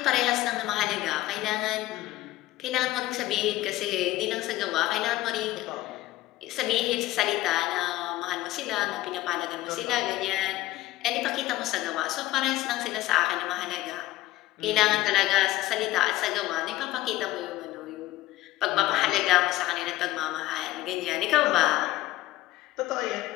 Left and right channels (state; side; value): quieter; right; 16.4 dB